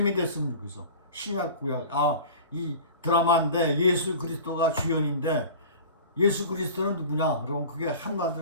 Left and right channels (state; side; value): inverted; both; correlation -0.38